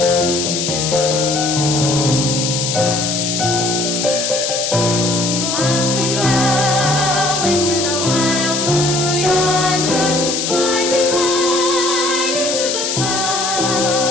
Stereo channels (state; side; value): noise; left; hiss, 1 dB below the sound